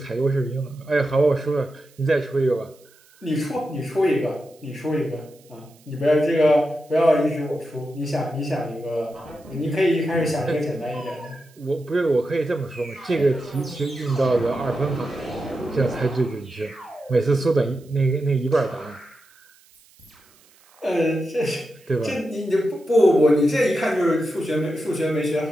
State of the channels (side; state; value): right; noise; hiss, 29 dB below the sound